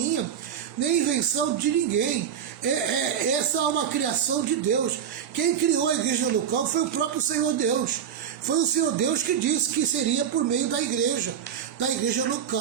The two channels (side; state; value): left; quieter; 8.6 dB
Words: nem invenção de ninguém. Essa é uma criação de Deus. Quem criou a igreja local foi o próprio Senhor Deus. Foi o Senhor Deus que disse que seria por meio da igreja